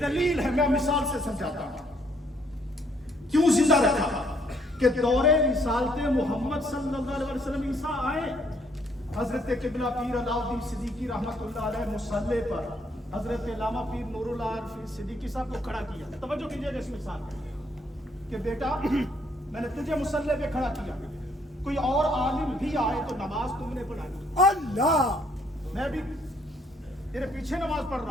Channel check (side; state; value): both; normal; correlation 0.68